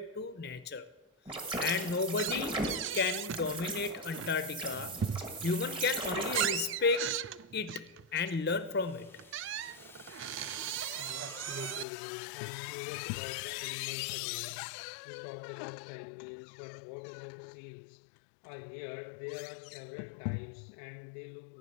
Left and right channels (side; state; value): right; drops out; at 11.9 s